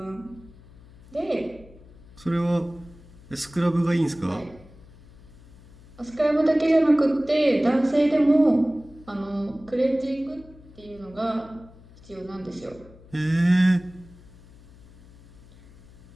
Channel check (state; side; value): noise; left; hum, 23 dB below the sound